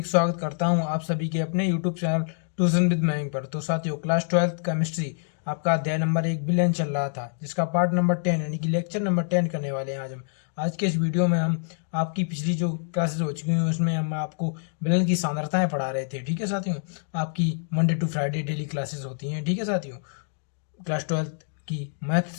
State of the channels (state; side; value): silent; right; digital silence